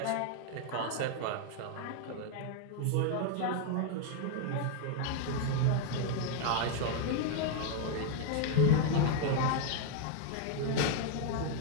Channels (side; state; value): both; different; correlation 0.00